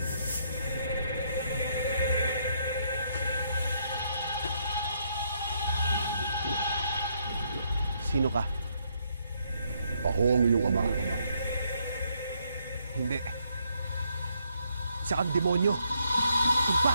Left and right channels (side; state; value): both; inverted; correlation -0.74